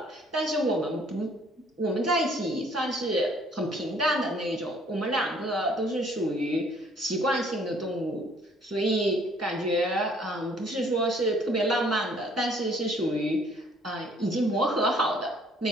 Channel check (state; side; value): normal; both; correlation 0.60